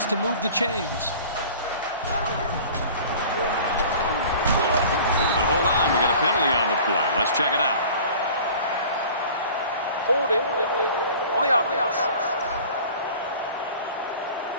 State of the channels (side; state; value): both; inverted; correlation -0.44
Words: to move the chains. But hold on, we got a penalty on the play. Let's check it out. Holding on the offense.